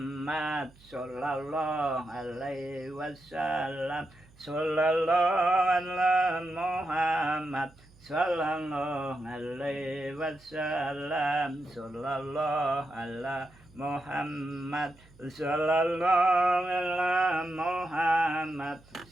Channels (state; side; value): noise; right; hum, 27 dB below the sound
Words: sallallahu alaihi wasallam sallallahu ala Muhammad sallallahu alaihi wasallam sallallahu ala Muhammad sallallahu ala Muhammad